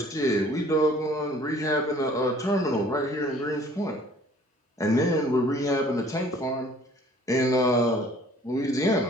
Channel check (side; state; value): both; normal; correlation 0.54